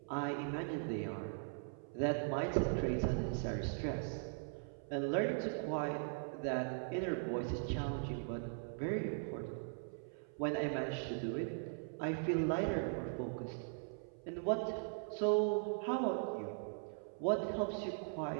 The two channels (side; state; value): left; silent; 51 dB below the other